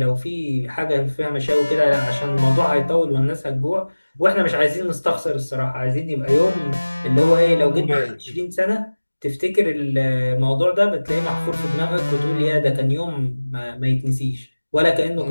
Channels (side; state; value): both; inverted; correlation -1.00